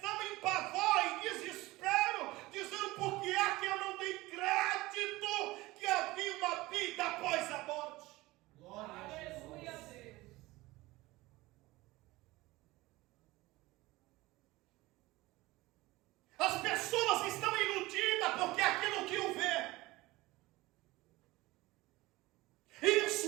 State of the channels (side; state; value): left; quieter; 19.8 dB